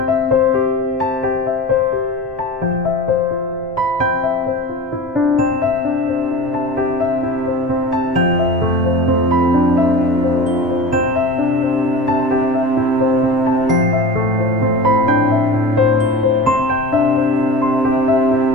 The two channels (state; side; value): normal; both; correlation 0.33